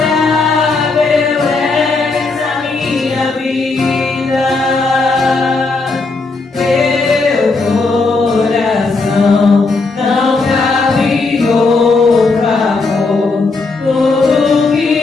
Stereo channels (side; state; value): right; quieter; 3.8 dB